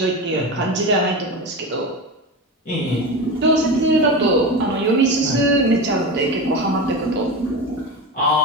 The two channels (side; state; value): both; normal; correlation 0.24